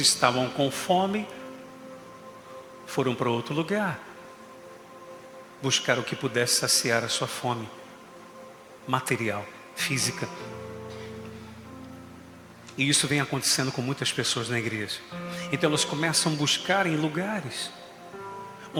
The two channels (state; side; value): identical; both; correlation 1.00